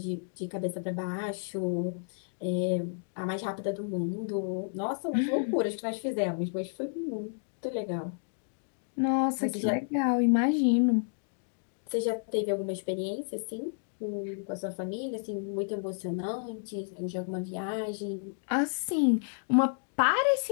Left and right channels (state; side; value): silent; right; digital silence